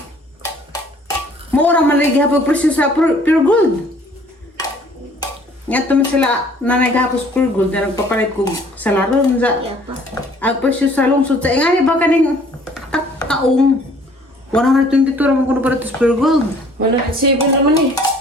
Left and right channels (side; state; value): both; normal; correlation 0.56